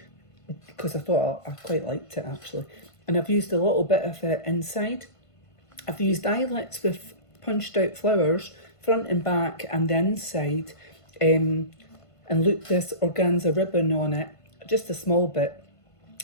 because I thought I quite liked it actually. And I've used a little bit of it inside. I've used eyelets with punched out flowers, front and back and the inside, and looped this organza ribbon on it, just a small bit.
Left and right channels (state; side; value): late; right; 1.5 ms